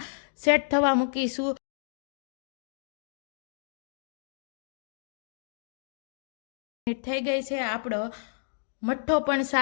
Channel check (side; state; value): right; silent; digital silence